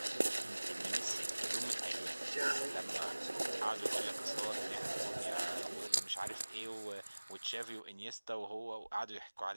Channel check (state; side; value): inverted; both; correlation -1.00